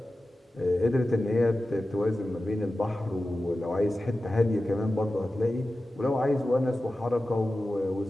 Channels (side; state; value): both; normal; correlation 0.94